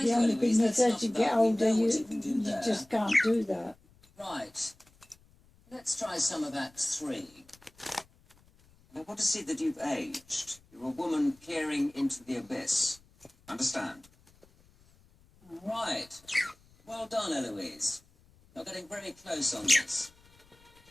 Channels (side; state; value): left; noise; rumble, 29 dB below the sound